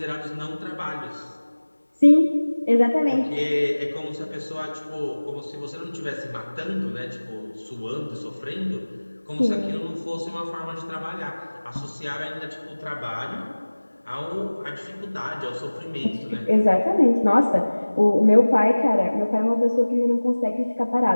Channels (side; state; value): both; inverted; correlation -1.00